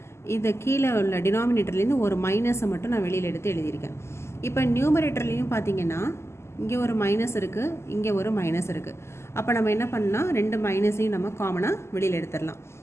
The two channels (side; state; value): right; late; 0.13 ms